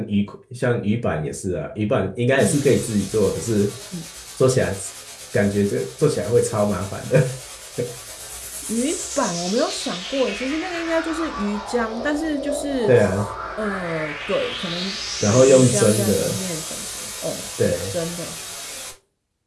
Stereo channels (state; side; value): identical; both; correlation 1.00